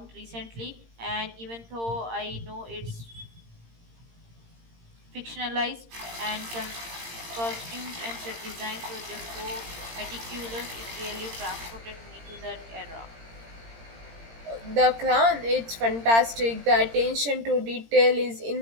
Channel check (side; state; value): left; late; 17 ms